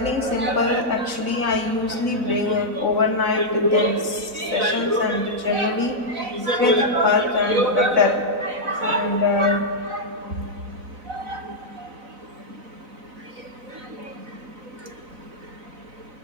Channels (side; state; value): left; late; 3.6 ms